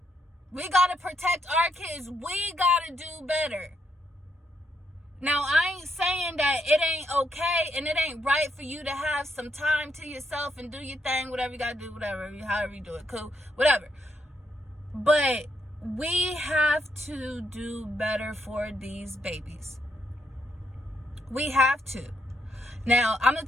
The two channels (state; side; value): normal; both; correlation 0.78